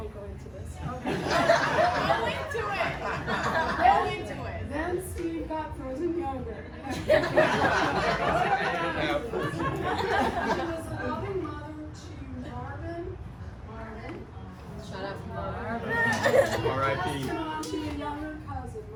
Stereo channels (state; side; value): identical; both; correlation 1.00